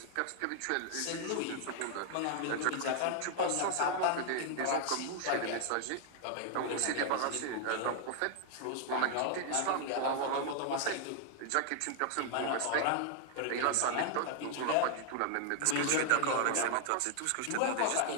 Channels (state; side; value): different; both; correlation 0.00